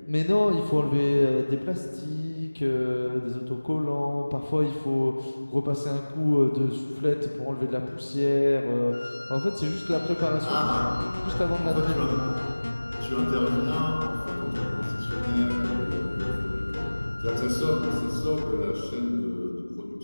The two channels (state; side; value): inverted; both; correlation -1.00